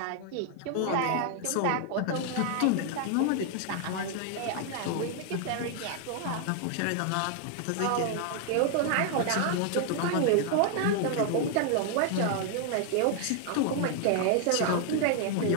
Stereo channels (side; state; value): both; different; correlation 0.00